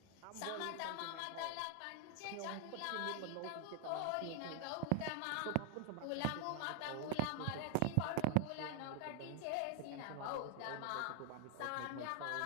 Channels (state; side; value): different; both; correlation 0.00